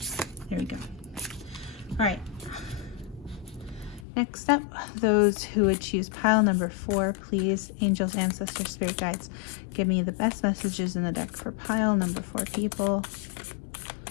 There we go. All right, next up, those who would choose pile number 4, please, angels, ancestors, spirit guides, give me the best messages in the deck for pile number 4 people.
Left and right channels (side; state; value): right; drops out; at 4.0 s